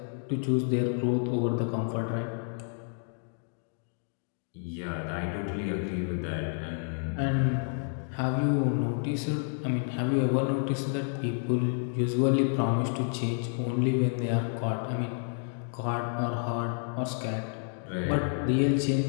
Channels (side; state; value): right; silent; 56 dB below the other